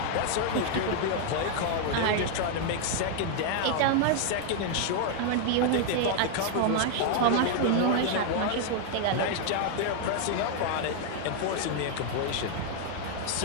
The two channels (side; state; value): both; different; correlation 0.00